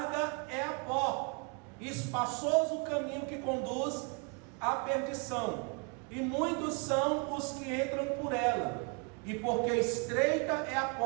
é a porta, e espaçoso o caminho que conduz à perdição, e muitos são os que entram por ela. E porque estreita é a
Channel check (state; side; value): quieter; left; 34.7 dB